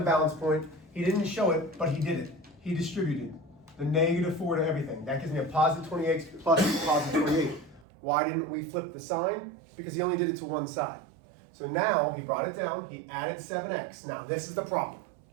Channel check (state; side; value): drops out; left; at 7.9 s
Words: balance point. He didn't show it, but he did it. He distributed the -4 to everything. That gives me a positive 28 plus positive 28. Why didn't we flip the sign? Because he only did it to one side. So now he brought it down, he added 7x. Now this is the problem.